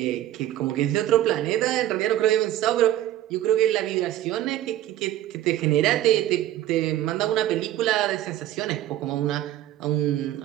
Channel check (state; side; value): quieter; left; 13.3 dB